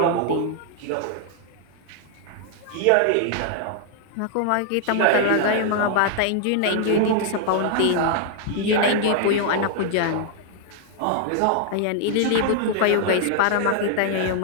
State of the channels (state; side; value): different; both; correlation 0.00